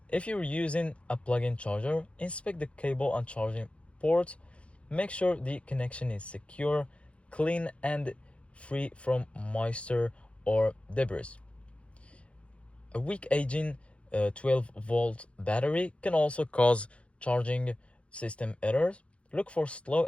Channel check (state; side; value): late; right; 0.061 ms